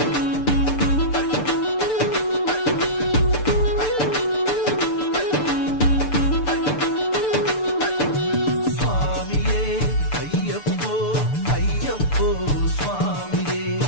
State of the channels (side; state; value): right; late; 6.8 ms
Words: స్వామియే అయ్యప్పో అయ్యప్పో స్వామియే